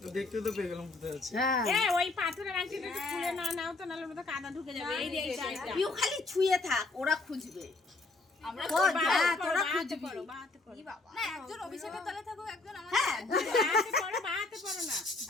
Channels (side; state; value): right; quieter; 3.4 dB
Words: দেখতে তো পেয়ে গেলাম কোথায় আছে। হ্যাঁ ওই পাথরের আংটিটা একটু খুলে নাও তো, নাহলে ওটা কাদা ঢুকে যাবে। এই যে এইটা তুই খালি ছুঁয়ে থাক, ওরা খুঁজবে। আমরা তোরা খুঁজবি বাহাতে পড়ো। না একজন অভিষেকের তলে থাকো, একজন আমাদের। হ্যাঁ বাহাতে পড়ো, বাহাতে পড়ো না,